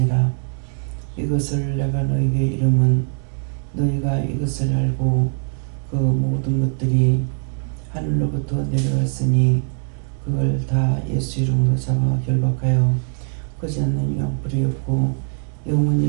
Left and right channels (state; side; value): silent; left; 56 dB below the other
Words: 이것을 내가 너희에게 이름은 너희가 이것을 알고 그 모든 것들이 하늘로부터 내려왔으니 그걸 다 예수 이름으로 잡아 결박하여 거지 않는 유황불이 없고